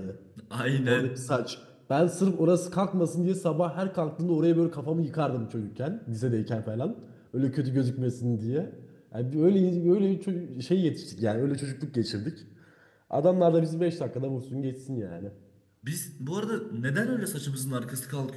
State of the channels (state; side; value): identical; both; correlation 1.00